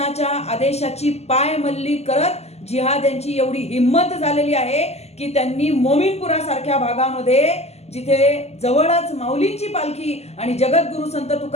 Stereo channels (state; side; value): late; right; 0.30 ms